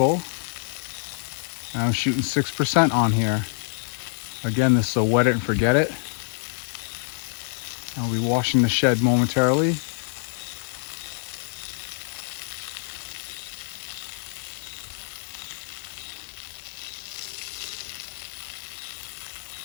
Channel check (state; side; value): silent; right; digital silence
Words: And I'm shooting 6% on here. Again, this is a wet it and forget it. I'll be washing the shed momentarily.